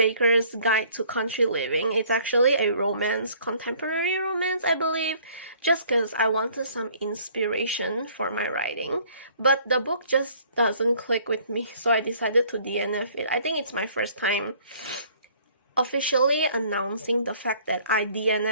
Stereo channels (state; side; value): inverted; both; correlation -0.57